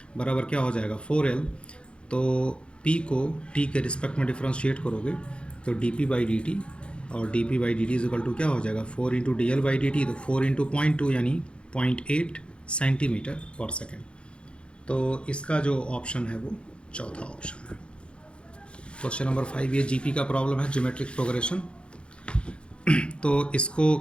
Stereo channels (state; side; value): late; right; 0.057 ms